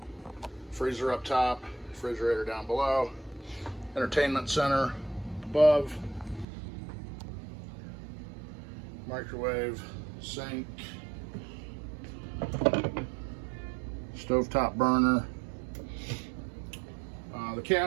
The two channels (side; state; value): left; drops out; at 6.5 s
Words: freezer up top, refrigerator down below, entertainment center above, microwave, sink, stovetop burner. The